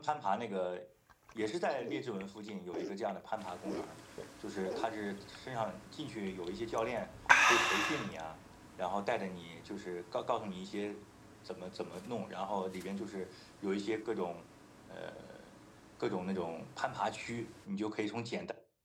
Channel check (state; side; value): identical; both; correlation 1.00